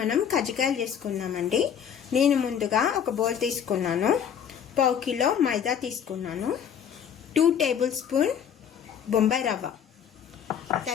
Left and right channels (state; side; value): quieter; right; 8.3 dB